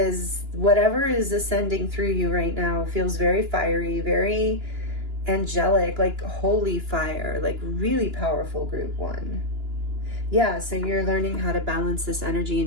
whatever is ascending through you right now feels very fiery, very angelic, like holy fire, like really powerful. Group 1. Yeah, so you're learning how to balance this energy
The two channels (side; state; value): left; late; 2.9 ms